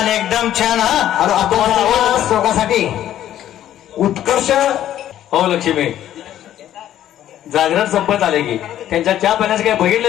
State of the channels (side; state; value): right; quieter; 11.8 dB